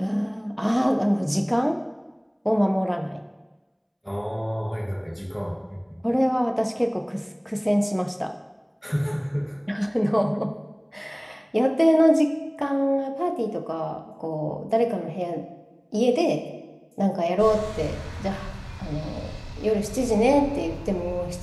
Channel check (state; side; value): identical; both; correlation 1.00